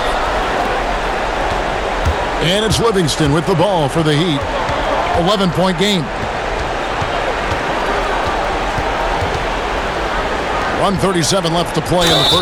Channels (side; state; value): both; identical; correlation 1.00